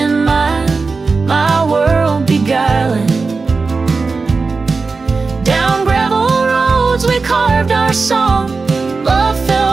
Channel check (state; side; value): quieter; left; 4.3 dB